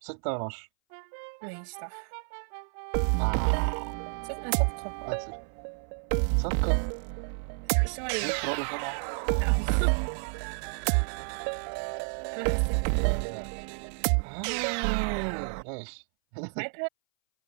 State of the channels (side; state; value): left; silent; 58 dB below the other